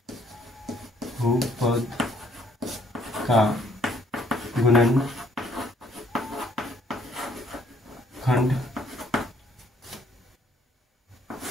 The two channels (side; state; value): both; normal; correlation 0.64